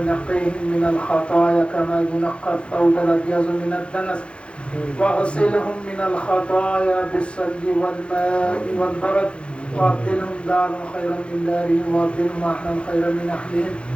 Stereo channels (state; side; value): late; right; 0.058 ms